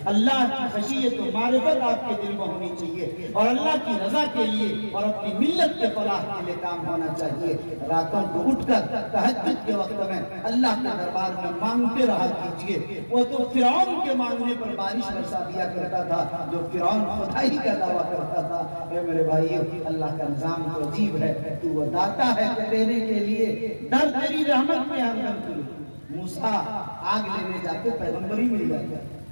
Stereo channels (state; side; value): inverted; both; correlation -1.00